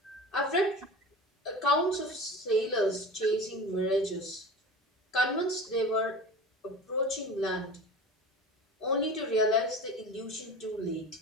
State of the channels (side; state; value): both; normal; correlation 0.35